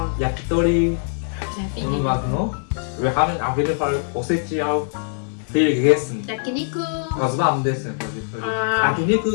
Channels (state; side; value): silent; right; 62 dB below the other